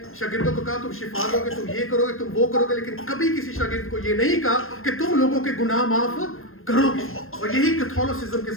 शागिर्दों को कहा तुम शिफा दोगे, तुम ये करोगे, तुम वो करोगे, लेकिन कभी किसी शागिर्द को ये नहीं कहा कि तुम लोगों के गुनाह माफ करोगे। और यही कैथोलिसिज्म के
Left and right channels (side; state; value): right; late; 0.61 ms